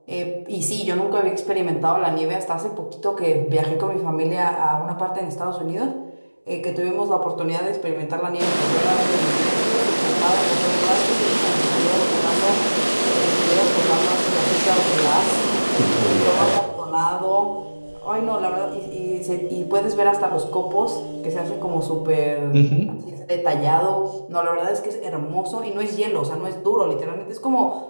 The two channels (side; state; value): both; inverted; correlation -1.00